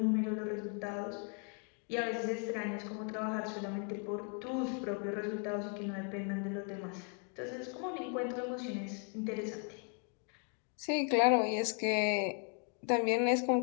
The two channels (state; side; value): quieter; right; 39.9 dB